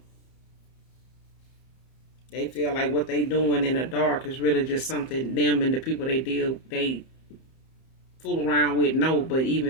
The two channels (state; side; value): late; right; 31 ms